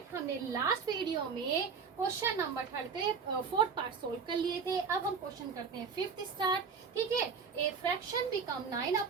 हमने last video में question number 4th part solve कर लिए थे। अब हम क्वेश्चन करते हैं 5th स्टार्ट। ठीक है। A fraction become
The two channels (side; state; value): left; quieter; 5.7 dB